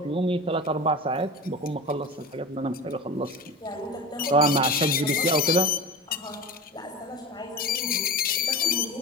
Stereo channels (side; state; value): both; normal; correlation 0.30